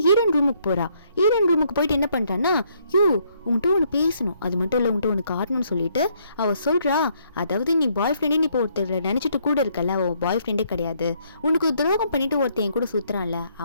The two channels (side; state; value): both; inverted; correlation -0.69